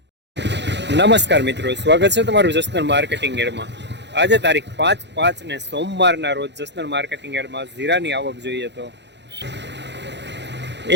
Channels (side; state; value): left; late; 0.51 ms